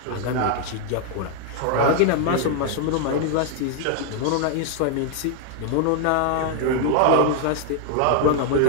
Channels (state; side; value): different; both; correlation 0.00